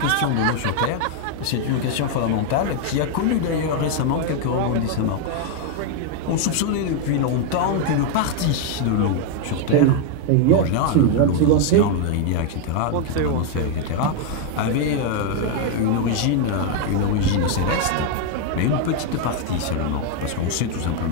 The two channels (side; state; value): both; different; correlation 0.01